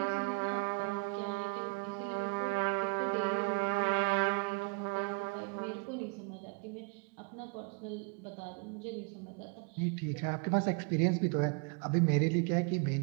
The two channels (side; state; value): left; quieter; 29.5 dB